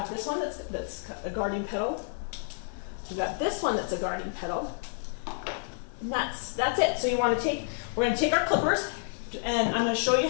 this one that's a guarding petal. We got this one that's a guarding petal, and that's it. So we're going to take our clippers, and I'm going to show you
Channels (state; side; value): silent; right; 58 dB below the other